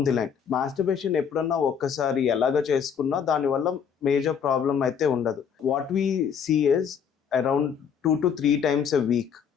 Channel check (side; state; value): right; quieter; 7.4 dB